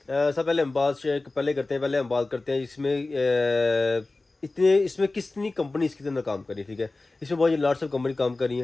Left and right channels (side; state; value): right; quieter; 3.2 dB